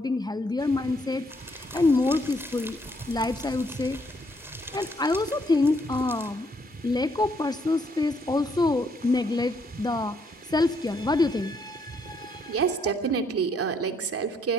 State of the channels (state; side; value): normal; both; correlation 0.70